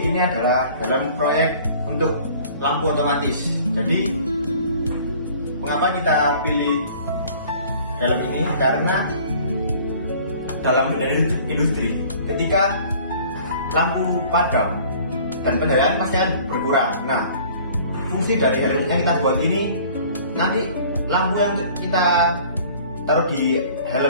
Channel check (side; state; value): both; inverted; correlation -0.50